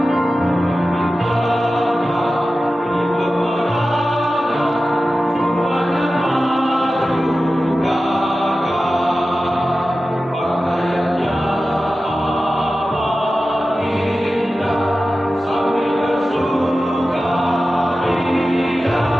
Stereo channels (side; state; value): both; normal; correlation 0.94